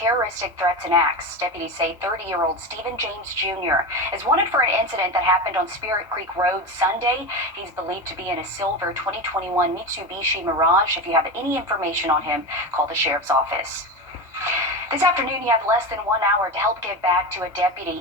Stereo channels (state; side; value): normal; both; correlation 0.21